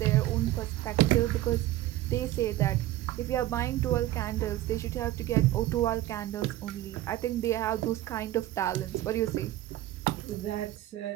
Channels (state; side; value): quieter; left; 15.1 dB